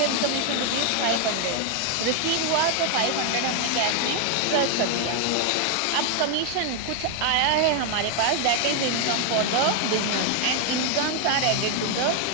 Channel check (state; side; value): different; both; correlation 0.01